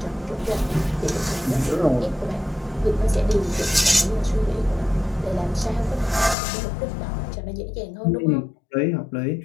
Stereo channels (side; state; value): right; drops out; at 6.4 s